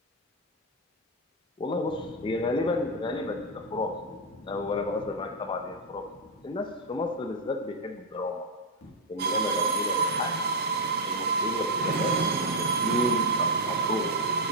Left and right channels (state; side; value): normal; both; correlation -0.02